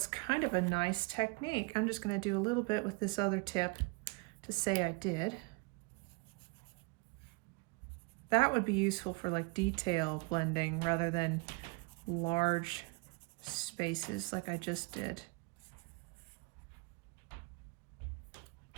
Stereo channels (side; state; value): left; quieter; 28.2 dB